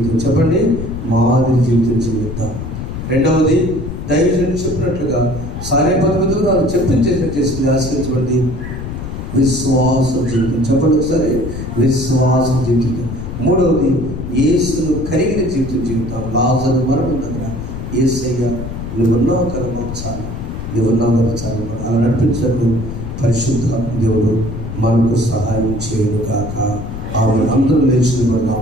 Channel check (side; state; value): left; noise; rumble, 7 dB below the sound